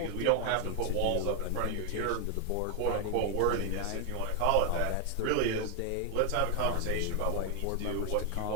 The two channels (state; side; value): different; both; correlation 0.01